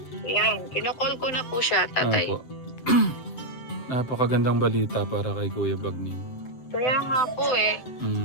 Yan. Kinocall ko na po siya, Tatay. Opo. Napakagandang balita para kay Kuya Bagnim. Kaya nga po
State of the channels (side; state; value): right; late; 7.7 ms